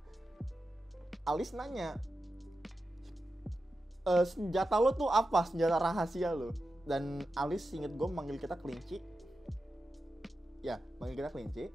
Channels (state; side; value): normal; both; correlation 0.91